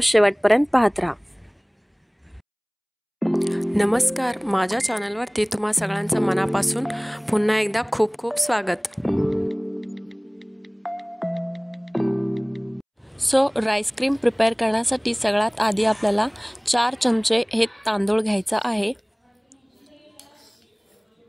शेवटपर्यंत पाहत राहा। नमस्कार, माझ्या चॅनलवरती तुम्हा सगळ्यांचं मनापासून पुन्हा एकदा खूप खूप स्वागत। सो राईस क्रीम प्रिपेअर करण्यासाठी सगळ्यात आधी आपल्याला 4 चमचे हे तांदूळ घ्यायचा आहे।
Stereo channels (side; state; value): both; identical; correlation 1.00